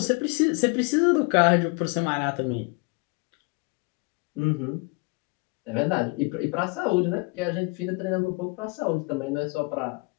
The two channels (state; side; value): quieter; right; 29.8 dB